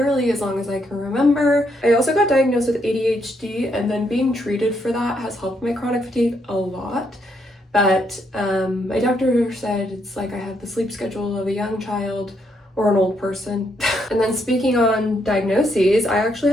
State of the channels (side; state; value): both; normal; correlation 0.75